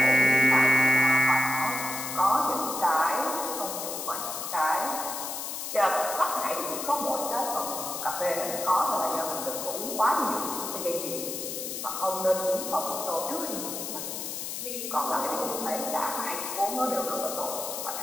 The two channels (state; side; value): noise; left; hiss, 5 dB below the sound